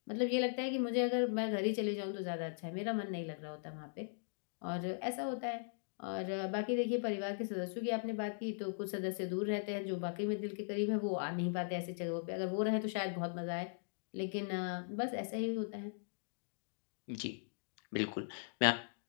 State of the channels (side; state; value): right; silent; digital silence